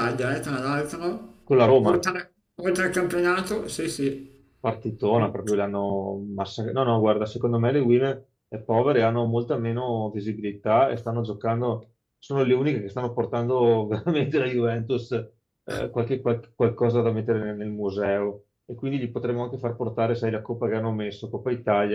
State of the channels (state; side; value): identical; both; correlation 1.00